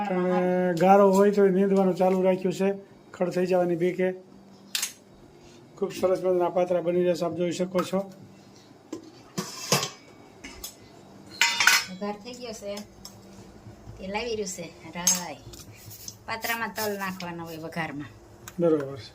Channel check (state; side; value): identical; both; correlation 1.00